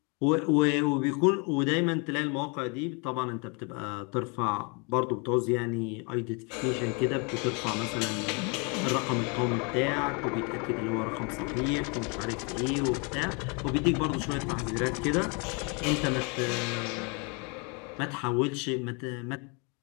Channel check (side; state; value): right; quieter; 33.2 dB